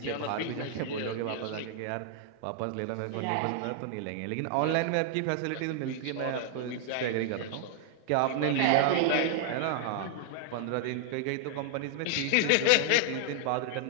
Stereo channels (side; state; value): both; different; correlation 0.00